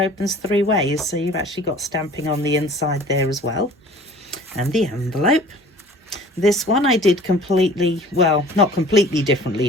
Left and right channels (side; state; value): both; normal; correlation 0.47